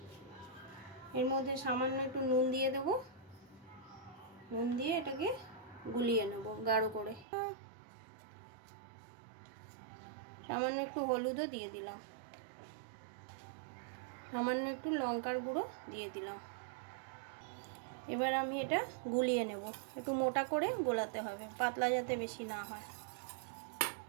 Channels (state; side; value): drops out; left; at 7.2 s